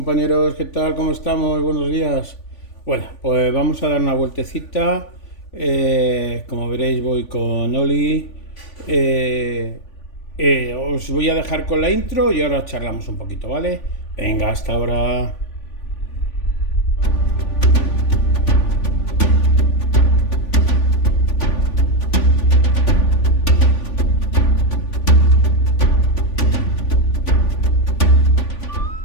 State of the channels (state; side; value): late; right; 3.5 ms